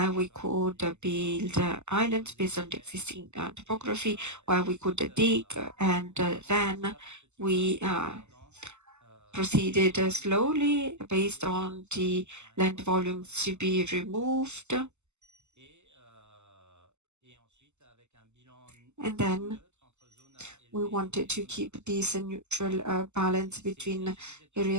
we could build islands based on the existing topography, where we could dig, and then we proceeded slowly based on the land volumes to be removed. And then we wanted to keep this neutral balance between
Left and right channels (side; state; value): left; late; 0.83 ms